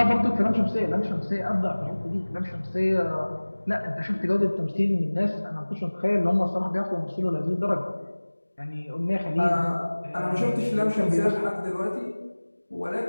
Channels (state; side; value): inverted; both; correlation -1.00